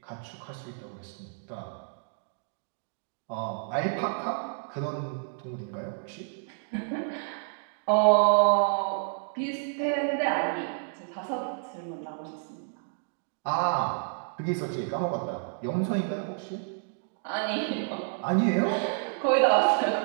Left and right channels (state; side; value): silent; left; digital silence